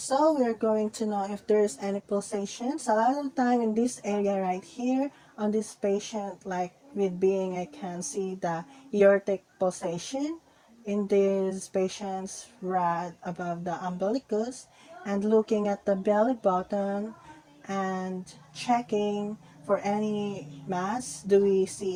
we're going to know if there's any pulsations. A lot of the time in this area right here, on this patient, like with being, I can see the aortic pulsation in these patients right above the umbilicus, and looking at the belly button and checking for any mass. Do we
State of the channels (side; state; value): both; identical; correlation 1.00